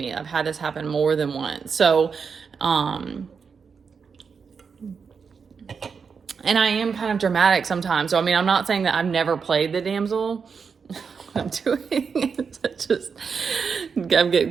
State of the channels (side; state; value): left; quieter; 5.8 dB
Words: I've had this happen more than once. So and I am kind of dramatic sometimes. So, I mean, I'm not saying that I've never played the damsel. What I'm doing is I'm getting